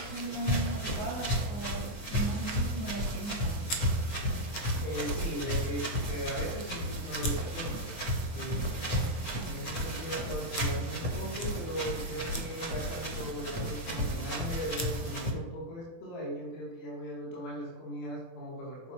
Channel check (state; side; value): late; right; 24 ms